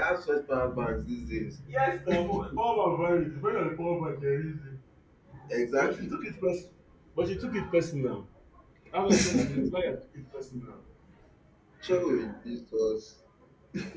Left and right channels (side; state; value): both; identical; correlation 1.00